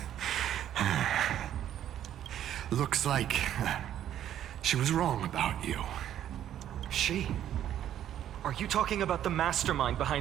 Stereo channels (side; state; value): left; quieter; 11.0 dB